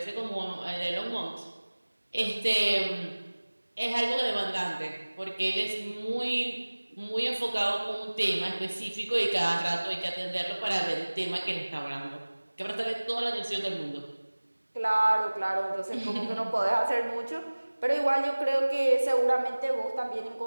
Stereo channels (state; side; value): inverted; both; correlation -1.00